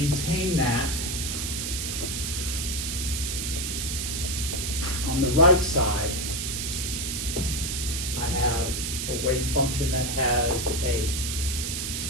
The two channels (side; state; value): right; noise; hiss, 2 dB below the sound